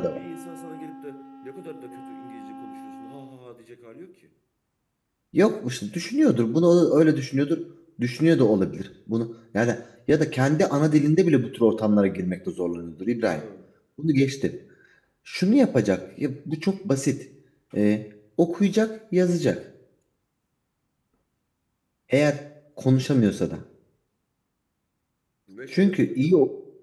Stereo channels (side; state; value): both; identical; correlation 1.00